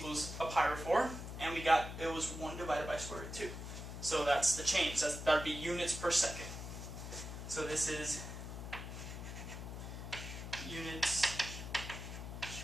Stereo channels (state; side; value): noise; left; hum, 8 dB below the sound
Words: a pi over 4, and we got it was 1 divided by square root of 2. So that's the change. That would be units per second. So this is units